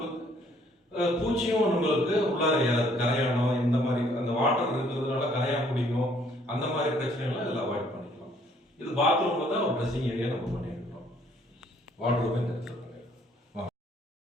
பூச்சியும் நம்மளுக்கு உள்ளார கரையானம், இந்த மாதிரி அந்த வாட்டர் இருக்கிறதுனால கரையா பிடிக்கும், அந்த மாதிரி பிரச்சனைகள்லாம் இதில் அவாய்ட் பண்ணிக்கலாம். இது பாத்ரூம்ல தான் ஒரு ட்ரெஸ்ஸிங் ஏரியா நம்ம பண்ணியிருக்கோம். வாட்டர் இந்த இடத்துல பண்ணியிருக்கோம்.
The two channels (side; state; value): both; normal; correlation 0.63